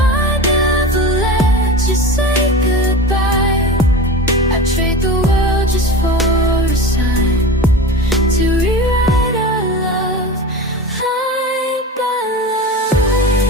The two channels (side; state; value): both; normal; correlation 0.31